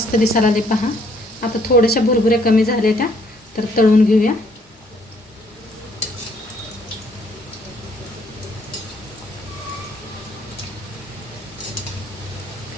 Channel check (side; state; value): both; normal; correlation 0.65